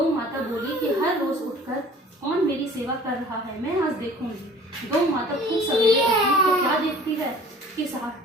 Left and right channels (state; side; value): normal; both; correlation 0.48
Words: माता बोली कि हर रोज उठकर कौन मेरी सेवा कर रहा है, मैं आज देखूंगी। गौ माता खूब सवेरे उठी तो क्या देखती है कि